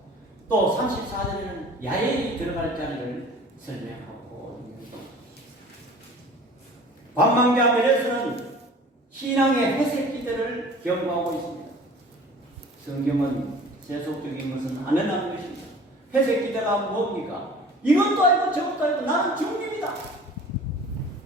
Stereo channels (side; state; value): both; normal; correlation 0.45